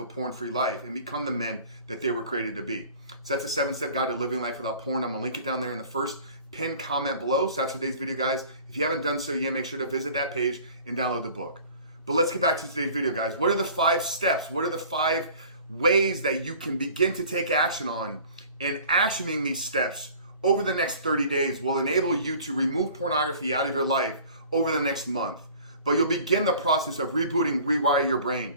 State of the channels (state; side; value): inverted; both; correlation -0.47